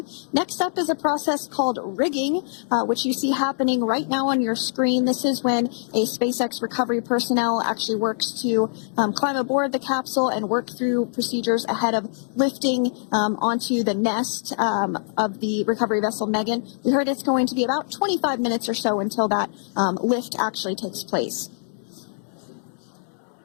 Next up is a process called rigging, which you see happening right now on your screen. This is when a SpaceX recovery personnel actually works to climb aboard the capsule and work through procedures ahead of lifting onto the nest of the recovery vessel Megan. We heard it's going to be about 25 minutes or so until that lift actually takes place.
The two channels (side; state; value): right; silent; digital silence